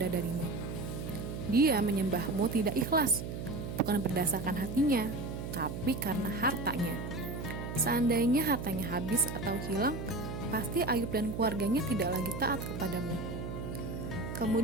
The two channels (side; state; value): right; noise; hum, 6 dB below the sound